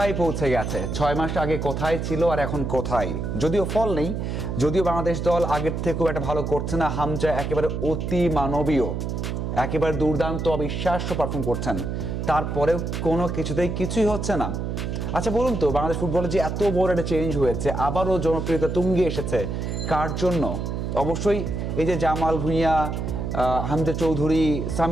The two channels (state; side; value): noise; right; hum, 3 dB below the sound